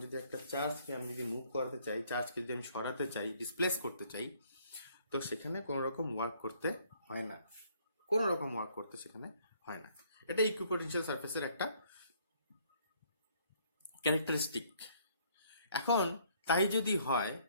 যদি একটা চার্জকে আমি যদি মুভ করাতে চাই, চার্জকে যদি আমি সরাতে চাই, ডিসপ্লেস করতে চাই, তো সেখানে কোনো রকম ওয়ার্ক করতে হয় না, কোনো রকম ওয়ার্ক করতে সেখানে হয় না। এটা ইকুইপোটেনশিয়াল সারফেসের একটা ক্যারেক্টারিস্টিক। এখন তাই যদি হয়,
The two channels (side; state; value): both; inverted; correlation -0.63